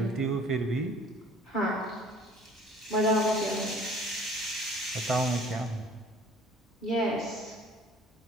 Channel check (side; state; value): both; normal; correlation 0.52